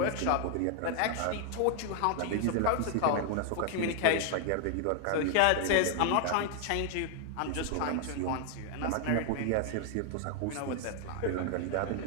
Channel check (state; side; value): different; both; correlation 0.00